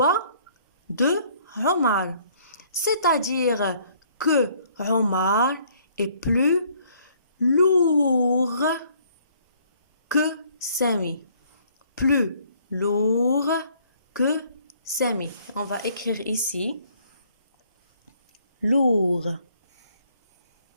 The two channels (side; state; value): both; inverted; correlation -0.62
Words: de Omar. C'est-à-dire que Omar est plus lourd que Sami. Plus lourd que Sami. On va écrire ici lourd.